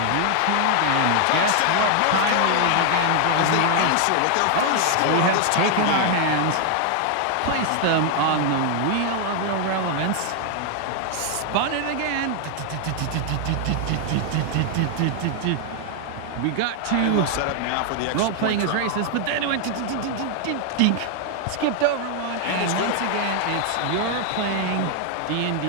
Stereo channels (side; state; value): both; different; correlation 0.00